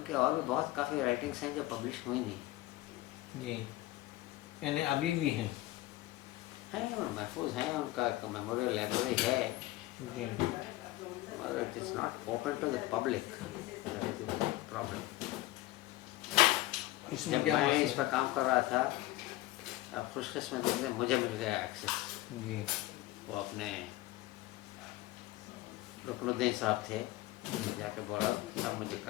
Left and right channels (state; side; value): quieter; right; 17.4 dB